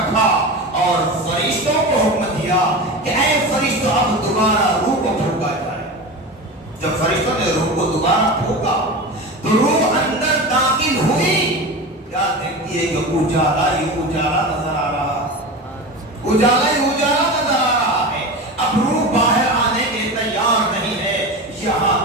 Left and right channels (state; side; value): normal; both; correlation 0.27